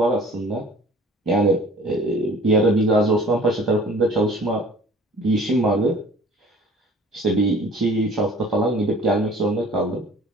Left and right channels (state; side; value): normal; both; correlation 0.49